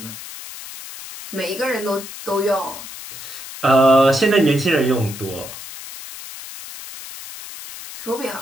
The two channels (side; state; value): left; noise; hiss, 12 dB below the sound